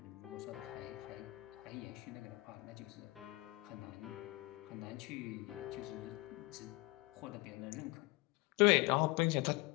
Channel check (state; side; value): quieter; right; 23.0 dB